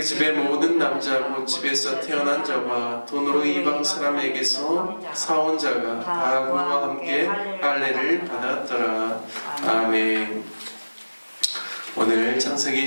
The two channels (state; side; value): inverted; both; correlation -1.00